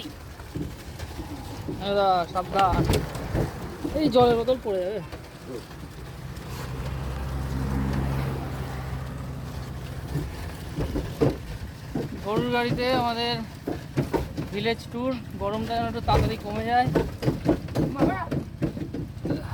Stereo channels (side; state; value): both; identical; correlation 1.00